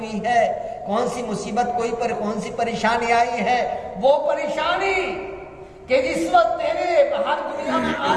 ہے؟ کون سی مصیبت کون سی پریشانی آئی ہے؟ وہ پریشانی کہ جس وقت تیرے باہر دنیا میں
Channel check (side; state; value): both; identical; correlation 1.00